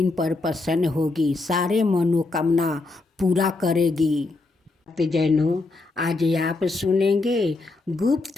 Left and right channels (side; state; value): right; quieter; 3.4 dB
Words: पर प्रसन्न होगी, सारे मनोकामना पूरा करेगी। भक्तजनों, आज आप सुनेंगे